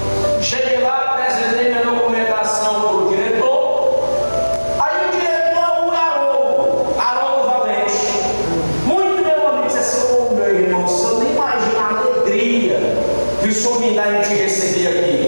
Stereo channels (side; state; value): both; inverted; correlation -1.00